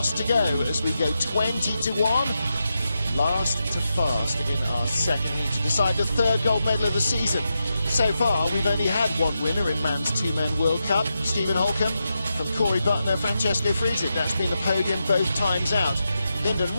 to go as we go 20-1. Last to fast in our second heat to decide the third gold medal of the season. So far, we've only had one winner in Man's 2Men World Cup. Stephen Holcomb from Corey Butner, Francesco Friedrich. That's been the podium both times out. Lyndon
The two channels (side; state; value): both; inverted; correlation -0.87